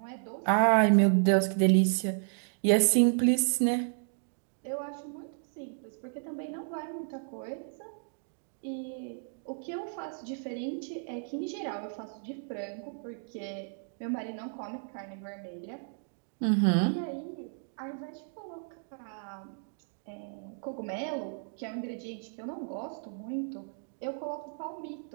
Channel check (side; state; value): left; silent; digital silence